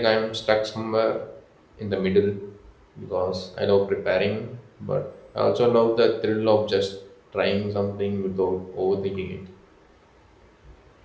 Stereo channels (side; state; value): both; identical; correlation 1.00